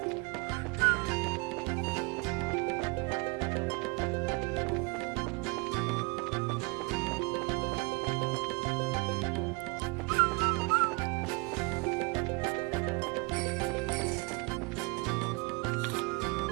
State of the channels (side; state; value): left; quieter; 28.4 dB